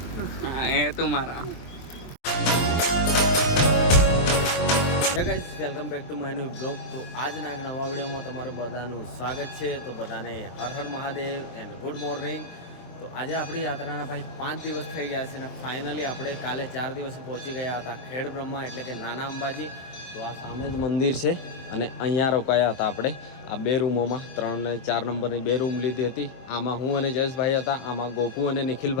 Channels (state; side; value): late; right; 23 ms